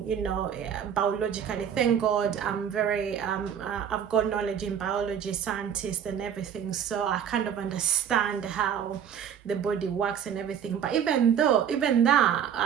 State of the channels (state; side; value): quieter; left; 8.5 dB